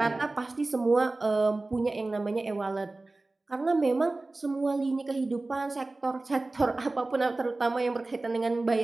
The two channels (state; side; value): quieter; left; 3.1 dB